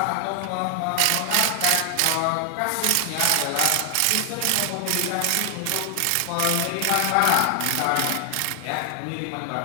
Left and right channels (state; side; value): different; both; correlation 0.00